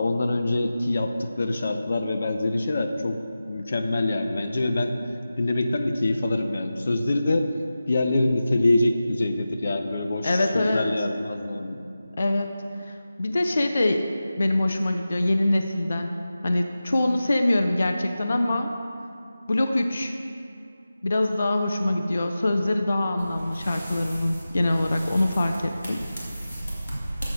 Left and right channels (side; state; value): both; inverted; correlation -0.94